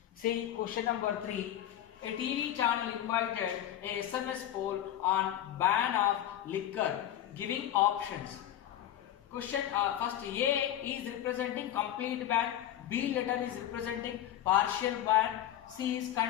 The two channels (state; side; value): quieter; right; 11.9 dB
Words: See question number 3. A TV channel invited a SMS poll on ban of liquor, giving options. Question first, A is representing complete ban, B letter is representing partial ban, C is